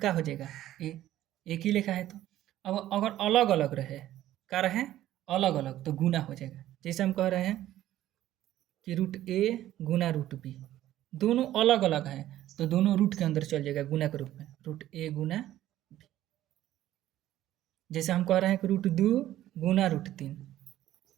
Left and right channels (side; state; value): left; quieter; 13.5 dB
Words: हो जाएगा ए, एक ही लेखा है तो। अब अगर अलग अलग रहे, क्या रहे? अलग अलग, तो गुना हो जाएगा। जैसे हम कह रहे हैं कि रूट ए गुना रूट बी, दोनों अलग अलग हैं तो दोनों रूट के अंदर चल जाएगा गुना के रूप में, रूट ए गुना बी। जैसे हम कह रहे हैं कि रूट 2 गुना रूट 3,